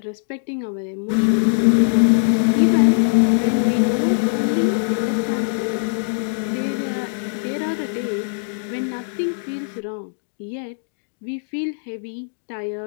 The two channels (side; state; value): right; silent; digital silence